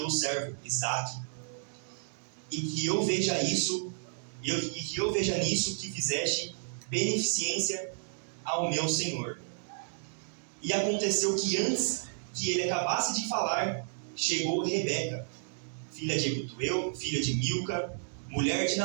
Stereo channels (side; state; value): left; silent; digital silence